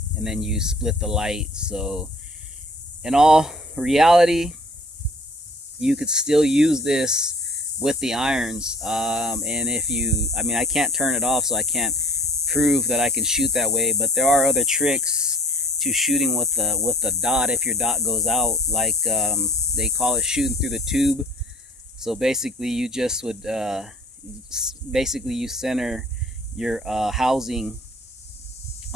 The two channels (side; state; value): both; normal; correlation 0.49